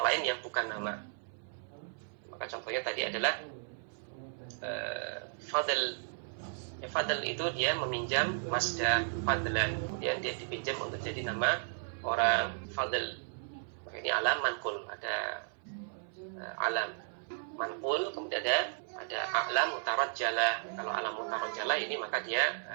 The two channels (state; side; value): silent; left; 55 dB below the other